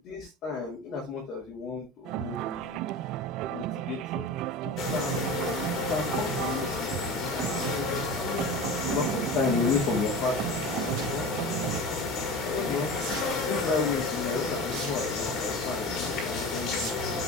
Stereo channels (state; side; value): normal; both; correlation 0.32